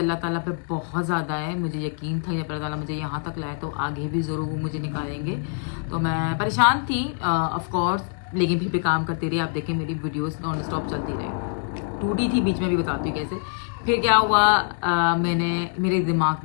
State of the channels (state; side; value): silent; right; digital silence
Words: ताला पे बहुत ज़्यादा है। मुझे यकीन था जब अल्लाह ताला मुझे यहाँ तक लाए तो आगे भी ज़रूर वो मुझे निकालेंगे। तो मैं परेशान थी ऑफ कोर्स, लेकिन फिर भी काम करती रही। आप देखें मेरी वीडियोस नॉन स्टॉप चलती रही, टूटी थी बीच में, भी बताती हूँ कैसे। फिर क्या हुआ, मेरे दिमाग